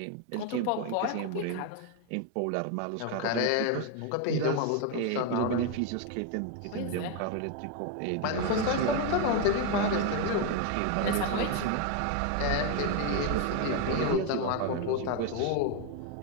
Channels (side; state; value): both; different; correlation 0.01